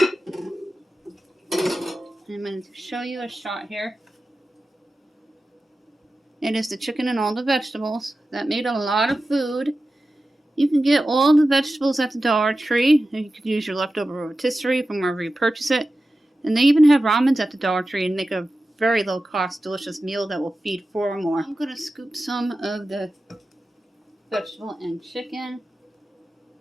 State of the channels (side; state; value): both; normal; correlation 0.94